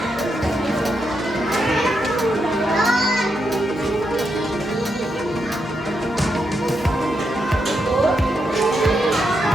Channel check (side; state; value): both; normal; correlation 0.82